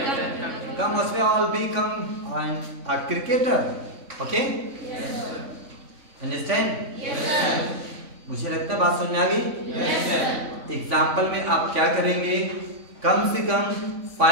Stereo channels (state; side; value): late; left; 3.6 ms